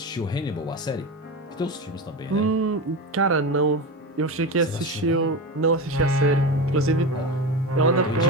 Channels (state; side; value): normal; both; correlation 0.22